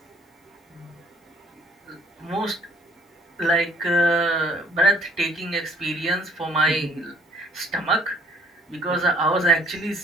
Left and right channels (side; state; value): both; normal; correlation 0.60